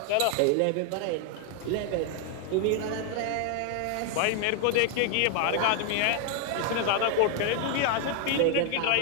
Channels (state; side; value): different; both; correlation 0.01